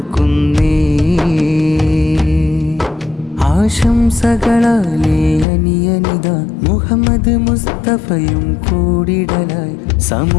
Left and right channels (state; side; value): drops out; right; at 5.5 s